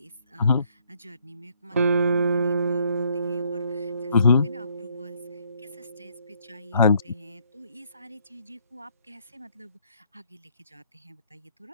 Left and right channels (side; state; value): both; inverted; correlation -0.67